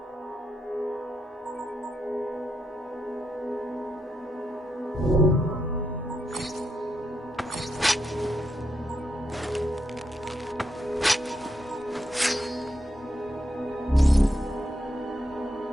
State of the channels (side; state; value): both; normal; correlation 0.82